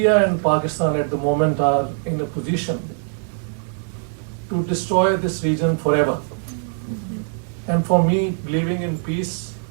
and Pakistan at the moment are in a position to destroy this region forever. And for me, believing in peace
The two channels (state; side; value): silent; left; 57 dB below the other